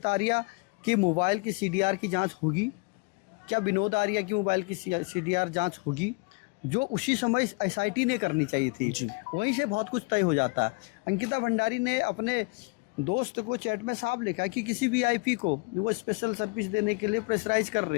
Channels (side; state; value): right; quieter; 29.3 dB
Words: आर्या कि मोबाइल की सीडीआर की जांच होगी? क्या विनोद आर्या की मोबाइल की सीडीआर जांच होगी, जो उसी समय एसआईटी ने करनी चाहिए थी? वहीं से बहुत कुछ तय हो जाता है। अंकिता भंडारी ने अपने दोस्त को चैट में साफ लिखा कि किसी वीआईपी को वो स्पेशल सर्विस देने के लिए प्रेशराइज कर